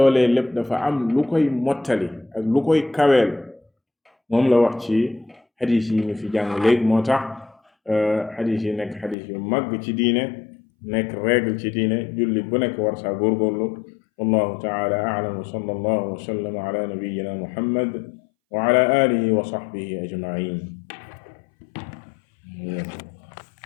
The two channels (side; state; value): right; drops out; at 9.2 s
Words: lépp dafa am lu koy mottali ak lu koy kaweel moom la wax ci xadis yi ñu fi jàng léegi moo tax xadis yi nekk xadis yu mag ci diine nekk règle ci diine julli bu nekk war saa góorgóorlu wallahu taala a'lam wa sallallahu wa sallam ala nabiyyina muhammad wa ala alihi wa sahbihi ajma'in